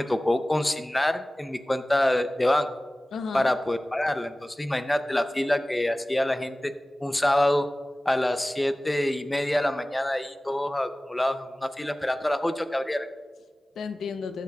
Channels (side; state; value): both; normal; correlation 0.97